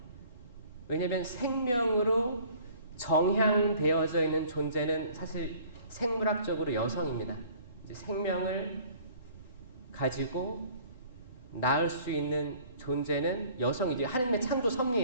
왜냐하면 생명으로 정향되어져 있는 존재는 사실 생물학적으로 여성입니다. 이제 생명을 가지고 낳을 수 있는 존재는 여성이지. 하나님의 창조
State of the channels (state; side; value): inverted; both; correlation -0.53